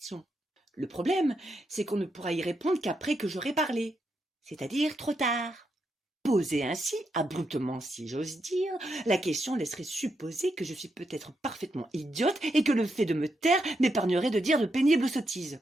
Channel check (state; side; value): normal; both; correlation 0.82